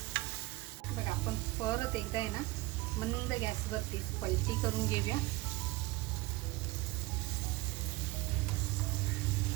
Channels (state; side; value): quieter; left; 20.3 dB